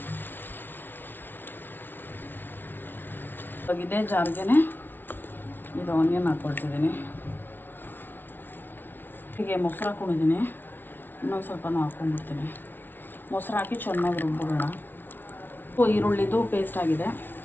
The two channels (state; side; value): late; right; 0.096 ms